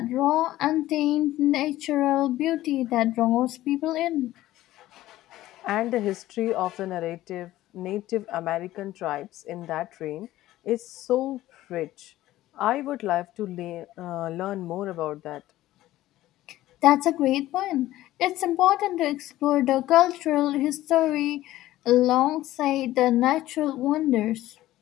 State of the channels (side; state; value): right; quieter; 15.3 dB